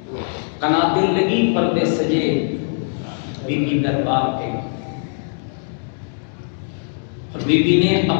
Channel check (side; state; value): right; silent; digital silence